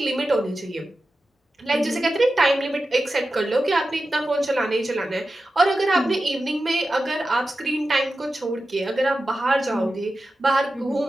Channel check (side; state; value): both; normal; correlation 0.92